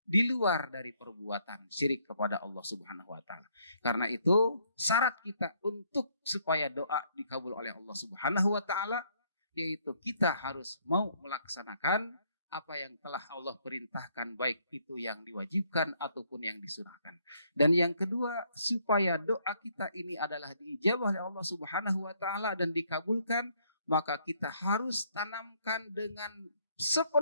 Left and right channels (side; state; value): both; inverted; correlation -0.68